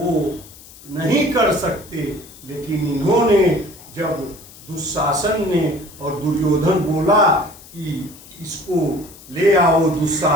नहीं कर सकते। लेकिन इन्होंने जब दुशासन ने और दुर्योधन बोला कि इसको ले आओ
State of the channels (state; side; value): noise; left; hiss, 20 dB below the sound